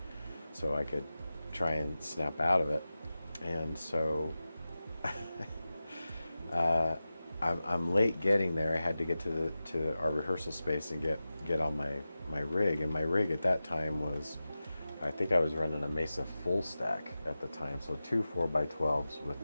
so I could try and snap out of it. And so I'm late getting there. I had to get to our rehearsal space and get on my rig. And my rig at that time was, I think I was running a Mesa full stack at the time, so 2 4x12s with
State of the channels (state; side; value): inverted; both; correlation -0.94